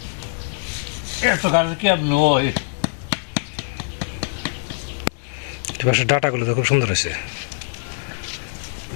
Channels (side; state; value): right; silent; 62 dB below the other